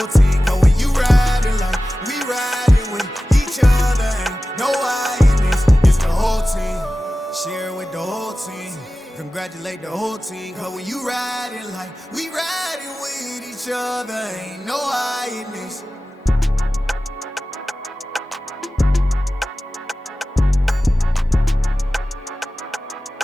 team, cause when you riding like we riding with each other, ain't no I in this, it's the whole team. Share it with the whole team, congratulate the whole team, cause when you riding like we riding with each other, ain't no I in this.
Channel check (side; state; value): both; normal; correlation 0.96